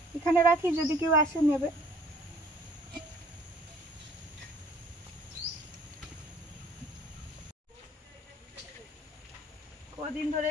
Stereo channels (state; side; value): normal; both; correlation 0.55